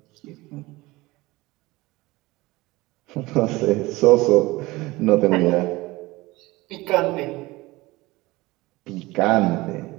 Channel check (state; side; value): quieter; left; 20.7 dB